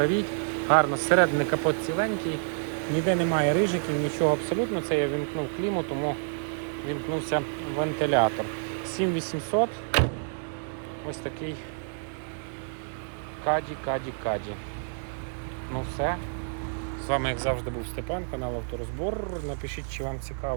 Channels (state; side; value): silent; left; digital silence